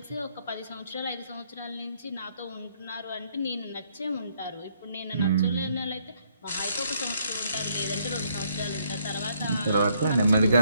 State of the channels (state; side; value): inverted; both; correlation -0.70